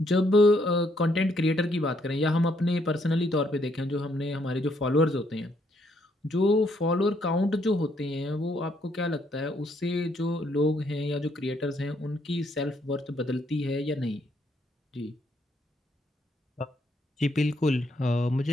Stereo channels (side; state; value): both; normal; correlation 0.72